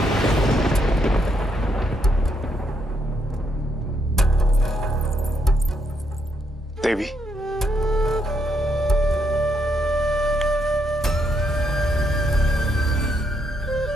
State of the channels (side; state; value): both; normal; correlation 0.76